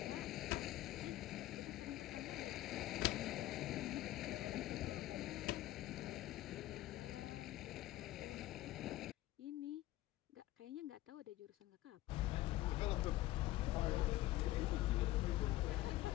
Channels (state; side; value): quieter; right; 16.0 dB